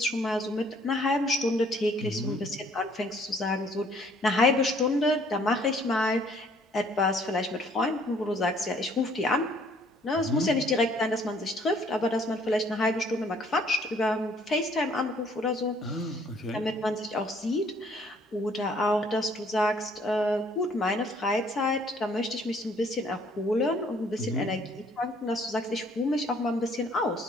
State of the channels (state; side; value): normal; both; correlation 0.61